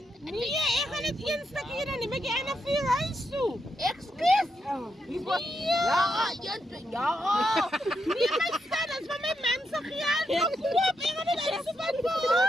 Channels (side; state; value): both; normal; correlation 0.82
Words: Nee, ik ga het één stukje dan neem ik je naar vier huis toe. Excuus. Ja, ja. Niet mijn staan, dat is van mijn mensen geld. Kom, ik ga het even van